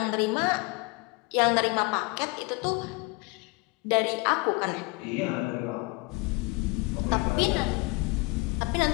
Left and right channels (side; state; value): right; quieter; 26.3 dB